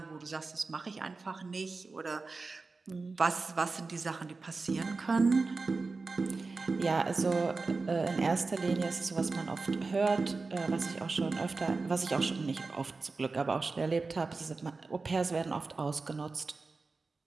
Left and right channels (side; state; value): left; quieter; 3.9 dB